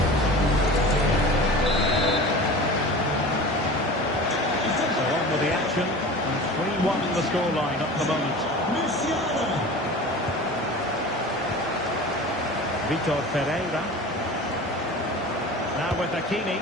So on with the action, and 3-1 the scoreline at the moment. Musiala. Vitor Pereira. Now with Hakimi.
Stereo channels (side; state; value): both; normal; correlation 0.36